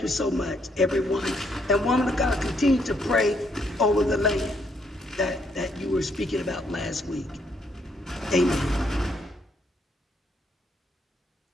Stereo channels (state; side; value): normal; both; correlation 0.72